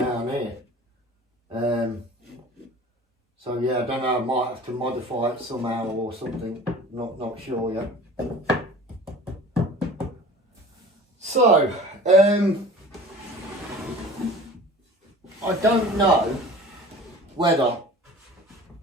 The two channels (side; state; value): both; normal; correlation 0.43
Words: here. So yeah, I don't know, I might have to modify it somehow or something. Not sure yet. So, I don't know whether